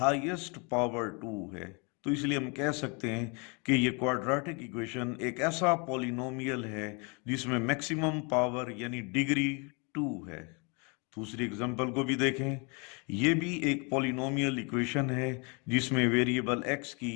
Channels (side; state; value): right; quieter; 32.9 dB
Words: पावर 2 है, तो इसलिए हम कह सकते हैं कि ये क्वाड्रेटिक इक्वेशन एक ऐसा पॉलिनोमियल है जिसमें मैक्सिमम पावर यानी डिग्री 2 है। दूसरी एग्जांपल को भी देखें, ये भी एक पॉलिनोमियल इक्वेशन है जिसमें वेरिएबल x